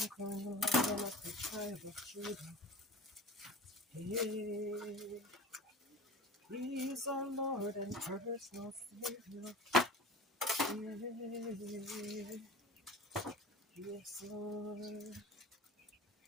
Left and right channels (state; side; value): normal; both; correlation 0.35